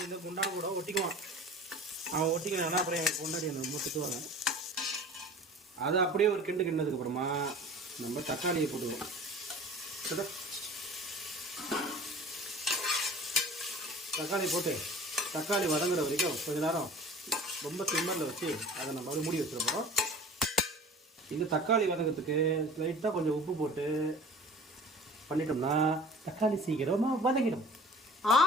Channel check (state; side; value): normal; both; correlation 0.43